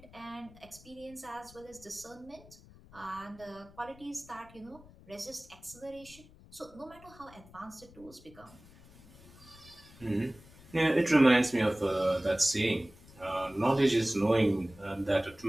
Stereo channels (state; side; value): noise; left; rumble, 22 dB below the sound